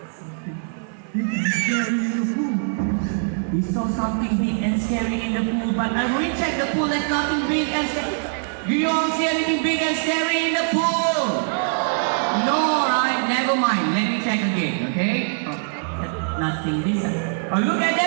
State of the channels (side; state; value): left; silent; 58 dB below the other